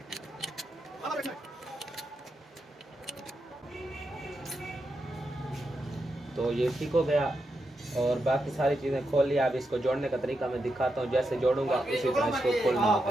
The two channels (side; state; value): both; normal; correlation 0.86